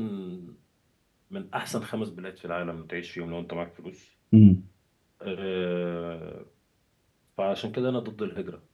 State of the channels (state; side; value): identical; both; correlation 1.00